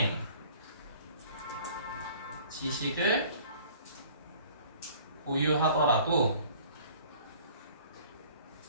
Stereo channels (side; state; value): both; inverted; correlation -0.52